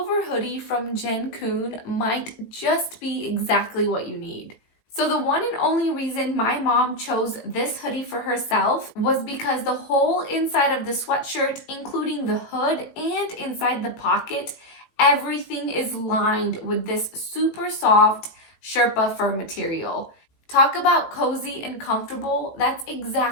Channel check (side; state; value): right; late; 18 ms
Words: hoodie from Jenkoon might just be exactly what you need. So the one and only reason my mom chose this hoodie for herself was because the whole inside of the sweatshirt, including the hood and inside the pocket, everything is lined with this super soft Sherpa fur material. Talk about cozy and comfortable. That's